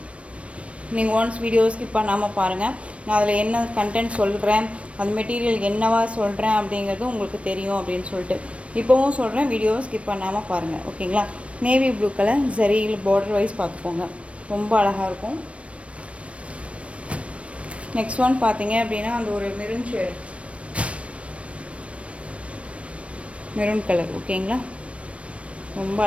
நீங்கள் ஒன்ஸ் வீடியோ ஸ்கிப் பண்ணாமல் பாருங்கள். நான் அதில் என்ன கண்டென்ட் சொல்கிறேன், அது மெட்டீரியல் என்னவா சொல்கிறேன் அப்படிங்கிறது உங்களுக்கு தெரியும் அப்படின்னு சொல்லிட்டு இப்போவும் சொல்கிறேன். வீடியோவை ஸ்கிப் பண்ணாமல் பாருங்கள். ஓகேங்களா, நேவி ப்ளூ கலர் ஜரியில் பார்டர் வைஸ் பார்த்துக்கோங்க. ரொம்ப அழகாக இருக்கும். நெக்ஸ்ட் ஒன் பார்த்தீங்க அப்படின்னா அந்த ஒரு மெரூன் ஷேட், மெரூன் கலர். ஓகேங்களா, ரொம்ப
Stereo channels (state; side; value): late; left; 0.062 ms